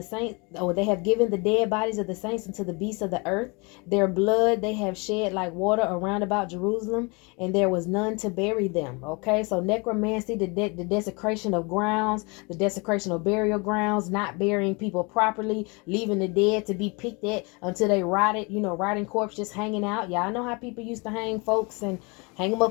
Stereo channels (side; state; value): right; quieter; 29.6 dB